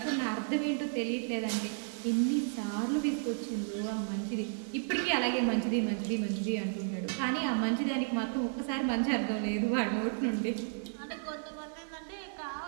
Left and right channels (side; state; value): left; silent; digital silence